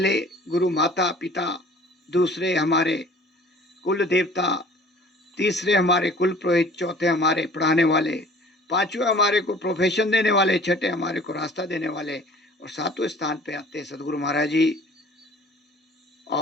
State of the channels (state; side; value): normal; both; correlation 0.49